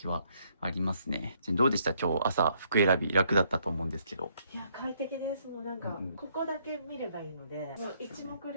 はありますね。どうでした？今日朝服選び楽だったと思うんですけど。いや、快適です。もうなんか、ここだけ見ればいいので、もう一目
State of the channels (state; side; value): inverted; both; correlation -0.69